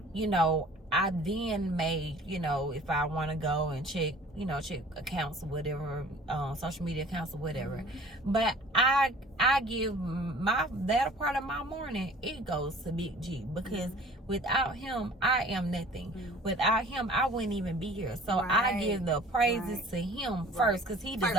I then may, if I want to go and check accounts or whatever, social media accounts or whatever. But I give that part of my morning, it goes to Big G, because without him, I am nothing. Without him, I wouldn't even be here. So I give the praises to him first, because he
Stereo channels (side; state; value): both; normal; correlation 0.48